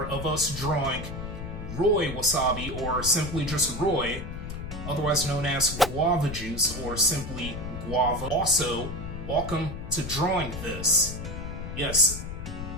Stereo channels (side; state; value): left; noise; rumble, 8 dB below the sound